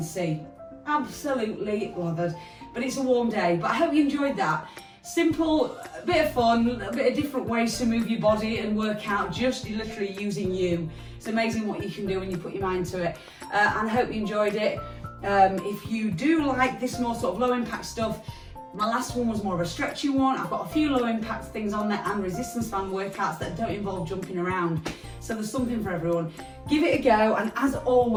see, absolutely lathered. But it's a warm day, but I hope you enjoyed that. Simple, a bit of fun, a bit of different ways to move your body and work out, just literally using you. It's amazing what you can do when you put your mind to it. And I hope you enjoyed it. If you do like this more sort of low impact stuff, my last one was more of a stretchy one. I've got a few low impact things on there and resistance band workouts that don't involve jumping around. So there's something for everyone. Give it a go, and as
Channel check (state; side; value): identical; both; correlation 1.00